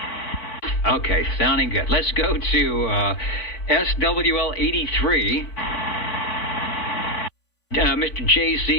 Okay, sounding good. Let's go to SWL 83. Mr.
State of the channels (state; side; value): late; right; 3.5 ms